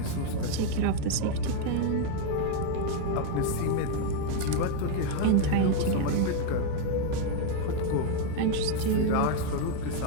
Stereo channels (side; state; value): both; different; correlation 0.00